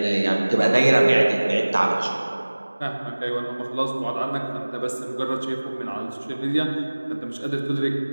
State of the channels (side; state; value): both; inverted; correlation -1.00